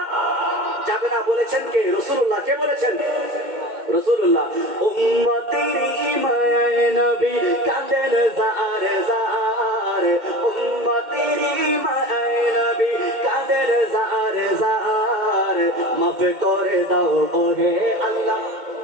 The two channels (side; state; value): left; late; 2.1 ms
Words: যাবে না। বলেছেন কে? রাসূলুল্লাহ। কে বলেছেন? রাসূলুল্লাহ। উম্মতের ইমায়ে নবী কাঁদেন জার জার, উম্মতের ইমায়ে নবী কাঁদেন জার জার, মাফ করে দাও ওহে আল্লাহ।